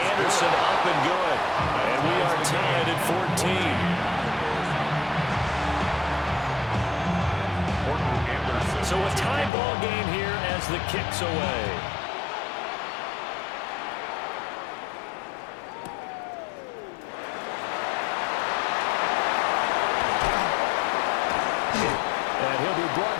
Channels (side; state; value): right; drops out; at 9.5 s